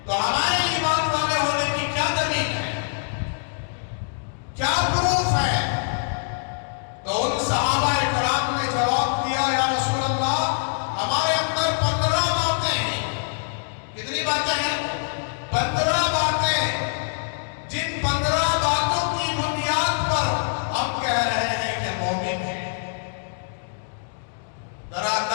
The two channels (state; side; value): silent; right; digital silence